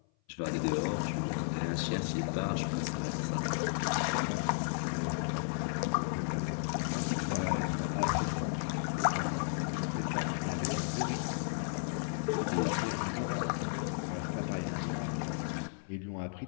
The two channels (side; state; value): right; silent; 55 dB below the other